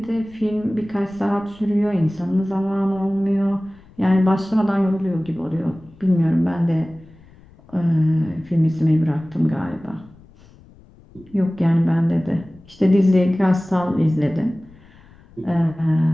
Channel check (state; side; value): noise; left; rumble, 25 dB below the sound